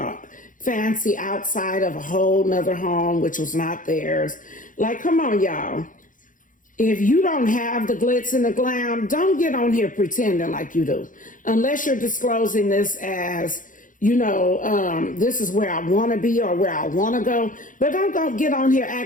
fancy outside of a whole nother home, which was not theirs. Like, come on, y'all. If you don't have the glitz and the glam, don't get on here pretending like you do. Unless you're disclosing this as, this is where I want to be or where I want to go. But don't go get on here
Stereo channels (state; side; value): late; right; 0.38 ms